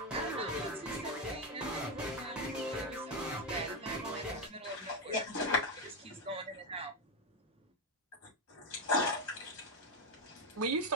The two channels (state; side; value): normal; both; correlation 0.07